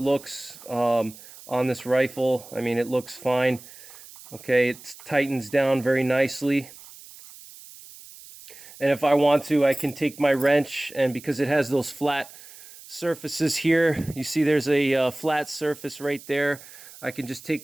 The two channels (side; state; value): right; noise; hiss, 19 dB below the sound